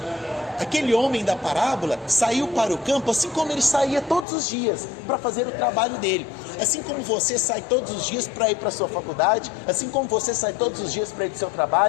Aquele homem da parábola saiu para o campo assim como ele saía todos os dias para fazer o trabalho dele. Assim como você sai todos os dias para ir para a sua faculdade, assim como você sai todos os dias para ir para o seu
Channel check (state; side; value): drops out; right; at 4.2 s